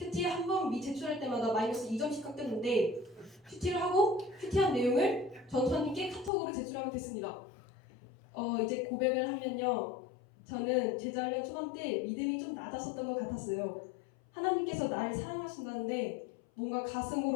한 번 제출할 때마다 마이너스 2점씩 깎였는데 큐티를 하고 큐티한 내용을 전수님께 카톡으로 제출하면 됐습니다. 이제 고백을 하면요. 저는 제자훈련 초반 때 믿음이 좀 낮았었던 것 같았어요. 하나님께서 나를 사랑하신다는데 뭔가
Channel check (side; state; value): right; drops out; at 6.3 s